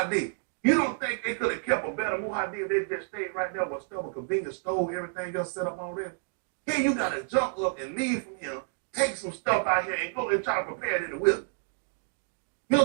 You don't think they could have kept a better muhadi if they just stayed right there with stuff, a convenience store, everything else set up already? Here you got to jump up and leave from him, take some stuff out here and go and try to prepare it in the wilderness. You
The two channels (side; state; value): left; silent; 58 dB below the other